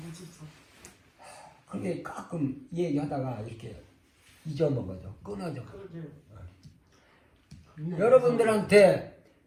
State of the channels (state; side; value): identical; both; correlation 1.00